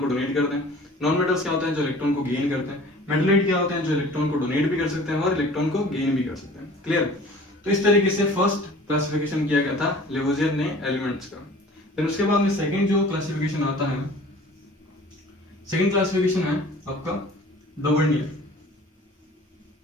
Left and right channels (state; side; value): normal; both; correlation 0.46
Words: को डोनेट करते हैं। नॉन मेटल्स क्या होते हैं, जो इलेक्ट्रॉन को गेन करते हैं। मेटलॉइड क्या होते हैं, जो इलेक्ट्रॉन को डोनेट भी कर सकते हैं और इलेक्ट्रॉन को गेन भी कर सकते हैं। क्लियर। तो इस तरीके से फर्स्ट क्लासिफिकेशन किया गया था लेवोजियर ने एलिमेंट्स का। फिर उसके बाद में सेकंड जो क्लासिफिकेशन आता है, सेकंड क्लासिफिकेशन है आपका डोवर्नियर।